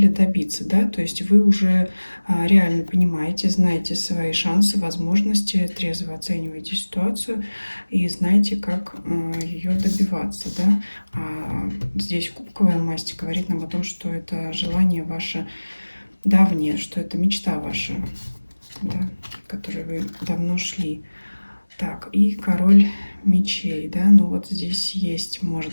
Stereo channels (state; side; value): inverted; both; correlation -1.00